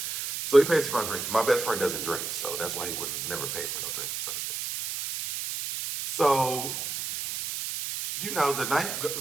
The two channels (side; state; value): right; noise; hiss, 4 dB below the sound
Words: So he pays for my drink. My best friend doesn't drink, so that's why he would never pay for no drinks. So, the night